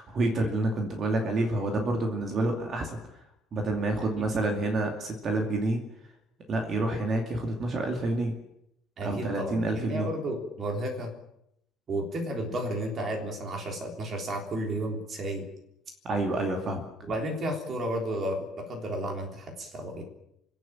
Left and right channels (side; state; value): both; normal; correlation 0.68